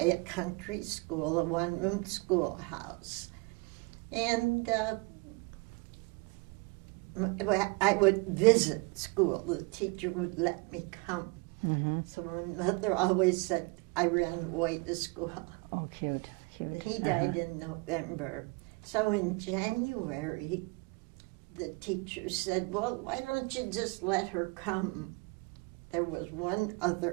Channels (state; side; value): quieter; left; 27.7 dB